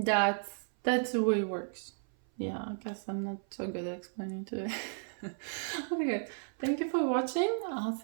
the way it works. Yeah, I guess I'm not so good at explaining to it. Okay, thank you for watching. I'll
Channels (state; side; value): silent; left; 55 dB below the other